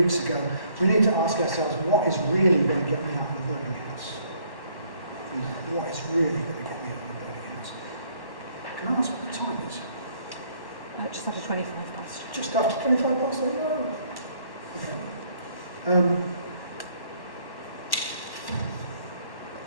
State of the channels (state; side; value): late; right; 1.1 ms